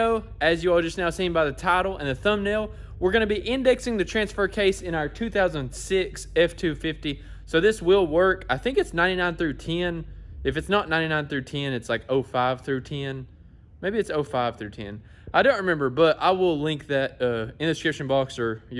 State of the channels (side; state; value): both; identical; correlation 1.00